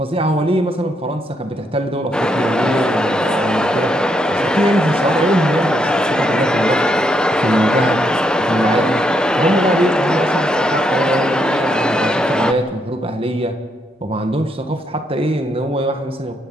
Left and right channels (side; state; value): both; normal; correlation 0.77